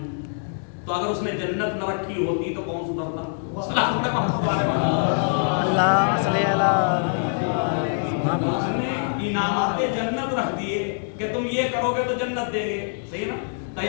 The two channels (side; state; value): right; silent; digital silence